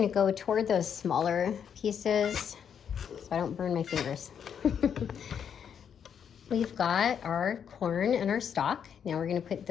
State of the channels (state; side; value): quieter; right; 7.9 dB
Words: go toward those smaller pieces so I don't burn my fingers. We've got our corn and our stalk. Now we're gonna put